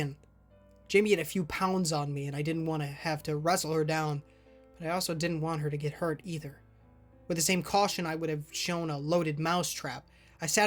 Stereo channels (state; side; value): identical; both; correlation 1.00